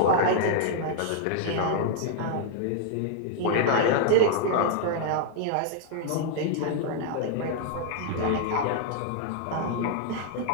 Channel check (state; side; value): different; both; correlation -0.01